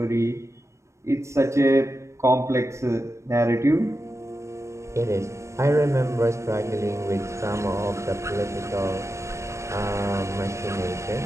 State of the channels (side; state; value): left; late; 0.14 ms